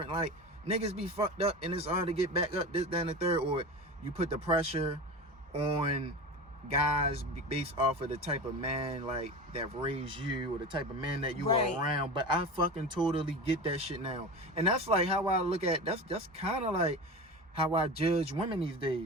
Like, niggas be fucked up and it's hard to get back up, this, that, and the third. Or you put the pressure on guys based off of the type of man, like, that raised you, or the type of man that you are around. But I fucking totally get that shit now. And that's like how I look at, that's kind of like how I judge women these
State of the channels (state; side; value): normal; both; correlation 0.28